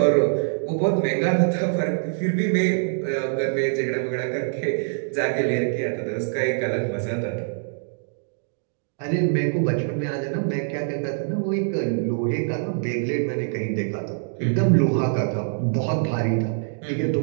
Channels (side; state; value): left; silent; digital silence